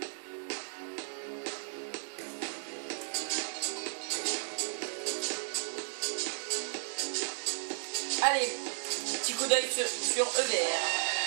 Allez, petit coup d'œil sur EVR.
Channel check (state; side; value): silent; left; digital silence